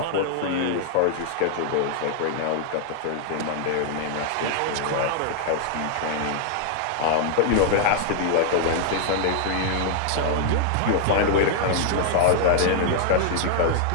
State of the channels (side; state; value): both; different; correlation 0.00